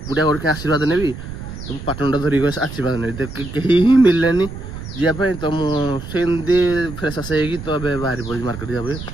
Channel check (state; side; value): noise; right; rumble, 10 dB below the sound